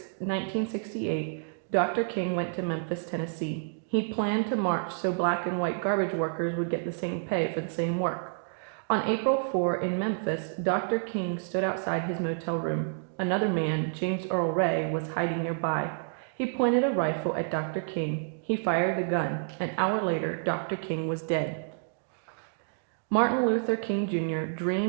Dr. King went to Memphis, Tennessee. He planned to march so black and white garbage workers would get the same pay for the same work. On April 4 in Memphis, Dr. King stood outside his motel room. Another man, James Earl Ray, was hiding nearby. He pointed a rifle at Dr. King. He fired the gun. An hour later, Dr. King was dead. Martin Luther King Jr.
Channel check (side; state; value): left; silent; digital silence